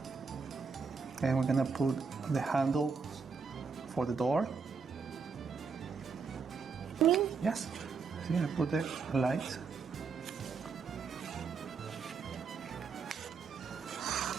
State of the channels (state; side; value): quieter; left; 5.2 dB